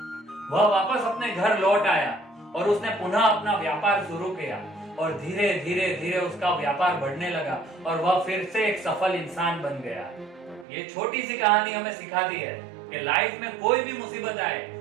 वह वापस अपने घर लौट आया और उसने पुनः अपना व्यापार शुरू किया और धीरे धीरे धीरे उसका व्यापार बढ़ने लगा और वह फिर से एक सफल इंसान बन गया। ये छोटी सी कहानी हमें सिखाती है कि लाइफ में कोई भी मुसीबत आए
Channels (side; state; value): left; drops out; at 10.7 s